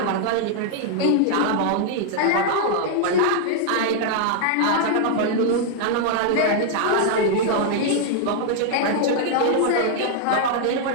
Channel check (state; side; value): different; both; correlation -0.01